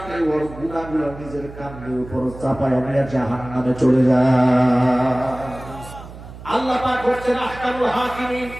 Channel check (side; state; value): right; noise; hum, 15 dB below the sound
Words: ওর গুনাহগুলো নিজের কাঁধের উপর চাপায় নিয়ে জাহান্নামে চলে যায়। আল্লাহ পাক হচ্ছেন আহকামুল হাকিমিন,